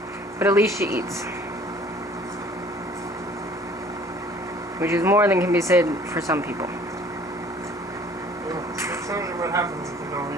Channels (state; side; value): normal; both; correlation 0.53